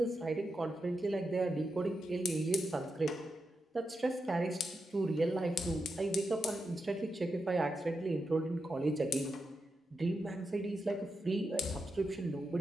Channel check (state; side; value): normal; both; correlation 0.87